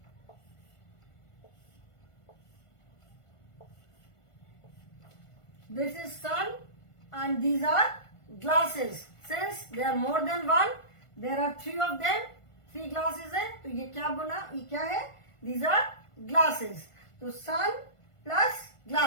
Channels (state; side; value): late; right; 1.5 ms